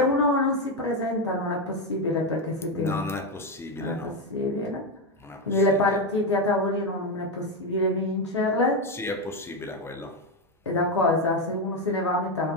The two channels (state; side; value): normal; both; correlation 0.09